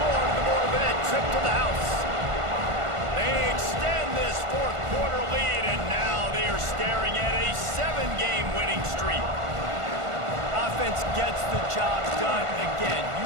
to the board with that trip to the house. They extend this fourth quarter lead, and now they are staring at a 7-game winning streak. Offense gets the job done again.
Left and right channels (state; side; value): late; left; 1.5 ms